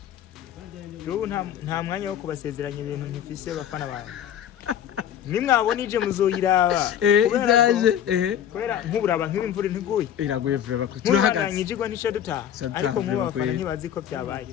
jo nta mwanya wo kubasezeranya ibintu ntifise bafana bawe nimwabona ije muzoyiraba kubera nk'uburaba nk'imvura ntiguye iraguye vrema ko turahagaze nyijigwa nisho duta ariko mu bafana ntibazi ko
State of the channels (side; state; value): right; quieter; 9.9 dB